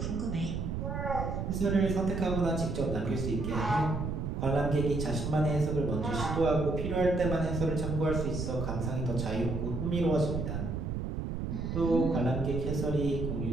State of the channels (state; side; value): noise; right; rumble, 3 dB below the sound